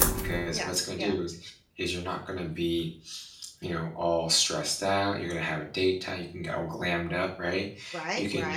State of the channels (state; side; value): identical; both; correlation 1.00